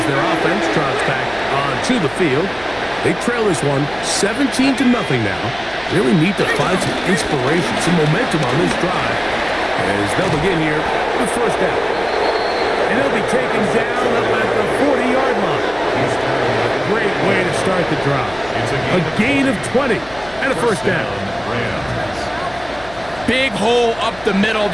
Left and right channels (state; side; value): noise; left; hum, 21 dB below the sound